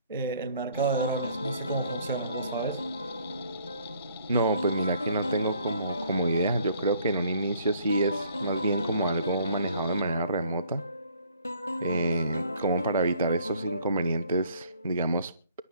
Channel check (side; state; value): both; inverted; correlation -0.61